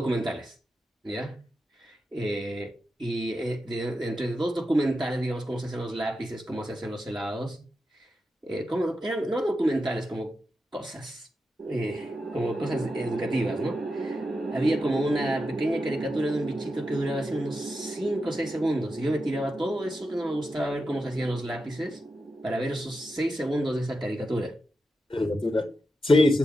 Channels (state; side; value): normal; both; correlation 0.88